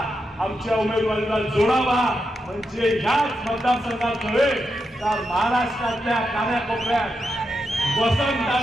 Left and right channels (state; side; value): normal; both; correlation 0.86